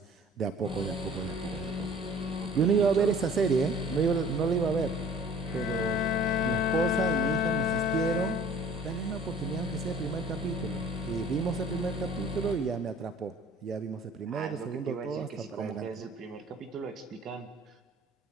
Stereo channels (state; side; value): normal; both; correlation 0.50